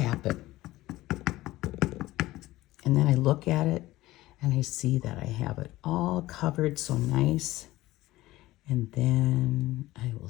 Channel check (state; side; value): quieter; right; 17.2 dB